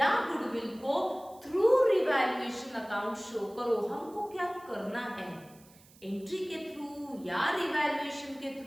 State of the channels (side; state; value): right; noise; hiss, 26 dB below the sound